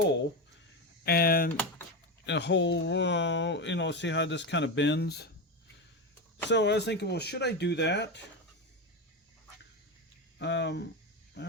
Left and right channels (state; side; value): normal; both; correlation 0.16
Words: and a hole, you know, see how this kind of bends? So I was thinking, well, should I do that? I